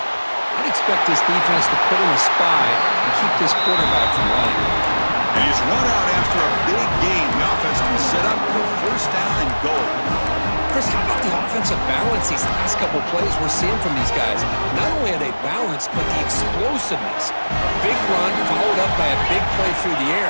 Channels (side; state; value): both; inverted; correlation -1.00